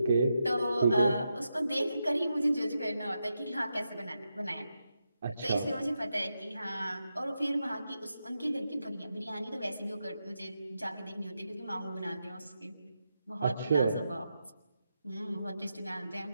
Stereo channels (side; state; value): both; inverted; correlation -0.86